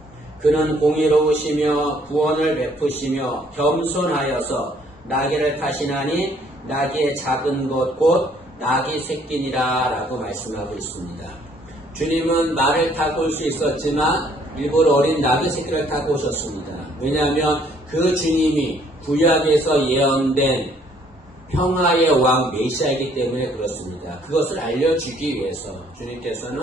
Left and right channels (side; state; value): both; normal; correlation 0.63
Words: 그는 공의로우시며 구원을 베푸시며 겸손하여서 나귀를 타시나니 나귀의 작은 것 곧 나귀 새끼니라 라고 말씀하고 있습니다. 주님은 말을 타고 올 수 있었지만 일부러 어린 나귀 새끼를 타고 오셨습니다. 왜냐하면 그 주님이 구약에서 예언된 평화의 왕 메시아이기 때문에 그렇습니다. 그것을 알려주기 위해서 주님께서는